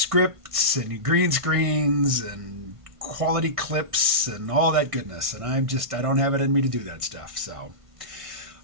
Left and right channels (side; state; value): left; late; 1.5 ms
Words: and green screens and quality clips and all that goodness. And I don't have it in me to do that stuff. So